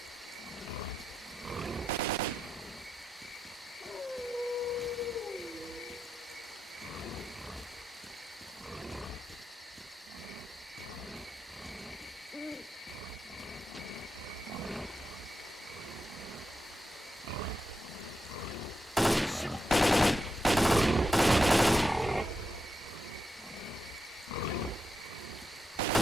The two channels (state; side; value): normal; both; correlation 0.86